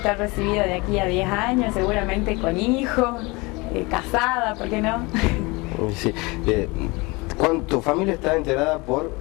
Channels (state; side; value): quieter; right; 25.2 dB